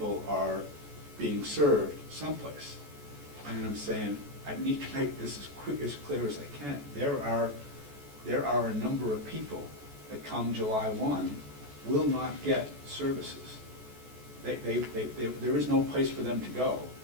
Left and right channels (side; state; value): left; late; 14 ms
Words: are being served someplace. And I'm saying, I need to make this as clear as I can. There are a number of people that come July 1 will not get services. There is no place for them to go.